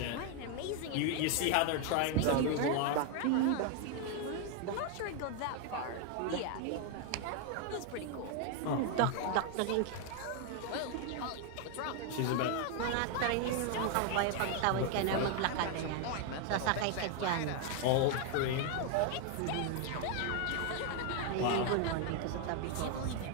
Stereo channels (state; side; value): different; both; correlation 0.00